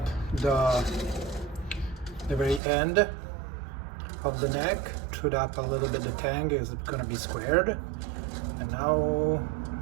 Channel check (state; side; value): drops out; left; at 2.6 s